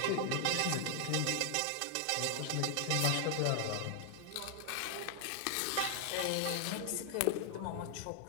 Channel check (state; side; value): different; both; correlation 0.00